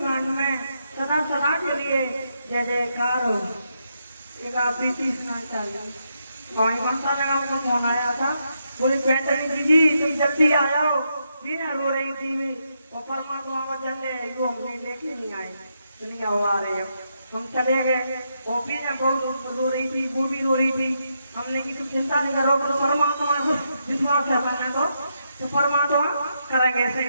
में सदा सदा के लिए जय जयकार हो। एक आप प्रीति सुना चाहिए। वहीं ममता नगर में फोन आया था, बोले पैंतनी जी तुम जल्दी आ जाओ, बिना रो रही थी मैं और परमात्मा को चले वो हमने लेके नहीं आए, दुनिया वो आ रहे हम चले गए। वो भी ना बहुत रो रही थी, वो भी रो रही थी। हमने की तुम चिंता नहीं करो, पर परमात्मा को विश्वास है मैंने तो परमात्मा करेंगे ऐसे,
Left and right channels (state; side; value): inverted; both; correlation -0.81